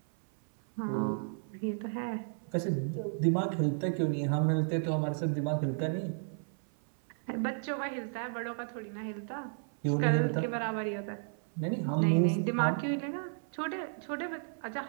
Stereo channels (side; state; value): left; silent; 56 dB below the other